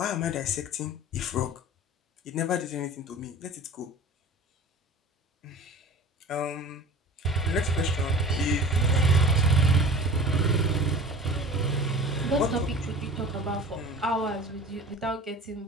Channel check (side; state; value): both; normal; correlation 0.41